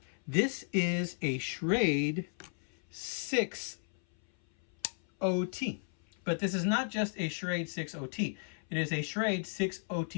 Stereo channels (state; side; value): silent; right; 55 dB below the other